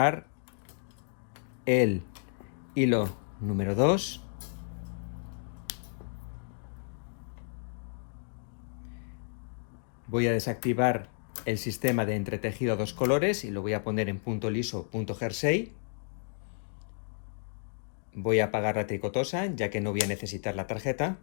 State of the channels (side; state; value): right; silent; digital silence